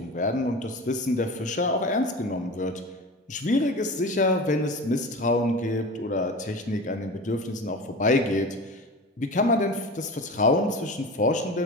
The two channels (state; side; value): normal; both; correlation 0.32